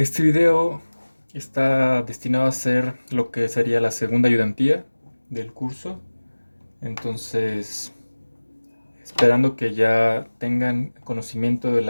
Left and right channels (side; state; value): both; inverted; correlation -1.00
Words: video está destinado a ser lo que sería la segunda ayudantía del curso. Entonces, esperando que ya tengan conocimiento de